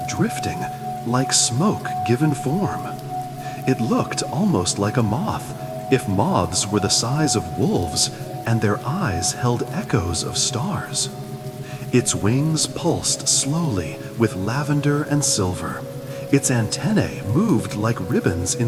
drifting, like smoke given form. It looked almost like a moth, if moths were the size of wolves and their eyes held echoes of stars. Its wings pulsed slowly with lavender and silver. Its antennae moved like ribbons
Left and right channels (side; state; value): both; identical; correlation 1.00